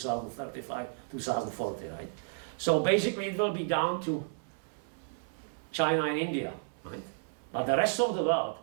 2040, right? So basically it will be down to China and India, right? But the rest of the world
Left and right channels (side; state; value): left; silent; 56 dB below the other